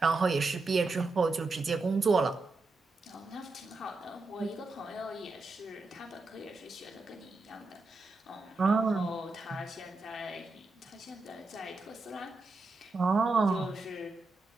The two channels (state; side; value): quieter; left; 3.5 dB